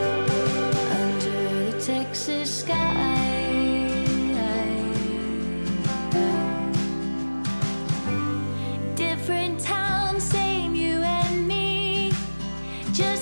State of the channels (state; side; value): inverted; both; correlation -1.00